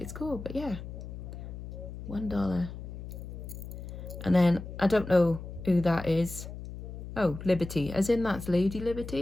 cool, but yeah, $1. And then I don't know who that is. Oh, Liberty, as in that's Lady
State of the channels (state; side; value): noise; left; hum, 10 dB below the sound